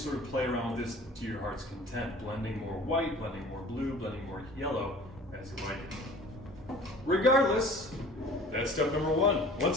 of play around with this to your heart's content, blending more white, blending more blue, blending more yellow as you like it. Regardless, that's step number one.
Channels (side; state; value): both; normal; correlation 0.46